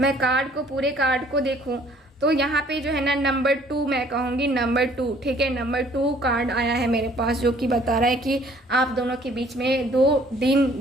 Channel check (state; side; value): normal; both; correlation 0.58